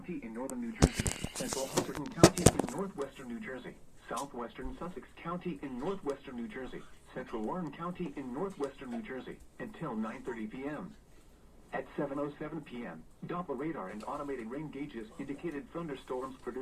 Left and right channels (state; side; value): identical; both; correlation 1.00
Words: in northern New Jersey, Central Hunterdon County in northwestern New Jersey, southwestern Sussex County in northwestern New Jersey, central Warren County in northwestern New Jersey, until 9:30 p.m. At 7:07 p.m., Doppler radar and automated rain gauges indicated thunderstorms